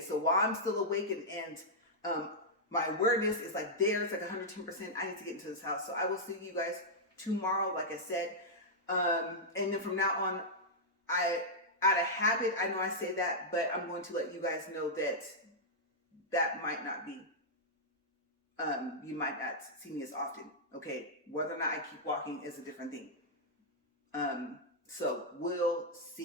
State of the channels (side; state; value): both; normal; correlation -0.08